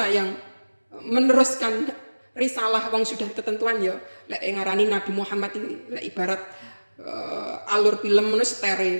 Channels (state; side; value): inverted; both; correlation -1.00